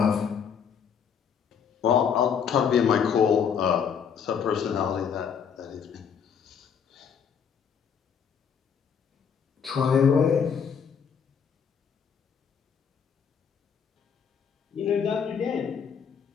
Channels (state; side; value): quieter; right; 7.1 dB